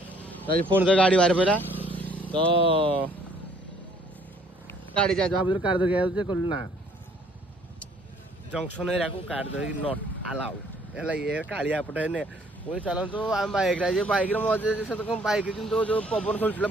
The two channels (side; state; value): both; normal; correlation 0.61